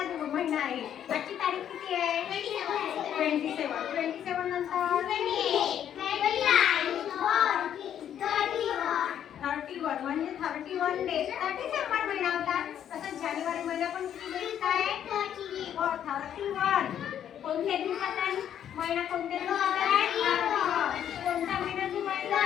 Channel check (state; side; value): quieter; right; 9.8 dB